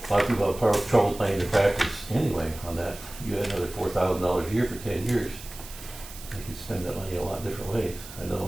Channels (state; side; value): noise; right; hiss, 15 dB below the sound